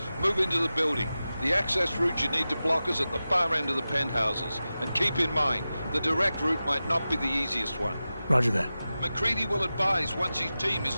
Move into the building. The access route you need to block is at the far end of the penthouses. And keep in mind, the direct route might not be the easiest one. Roger that. McCready will advise once his team is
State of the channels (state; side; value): inverted; both; correlation -0.94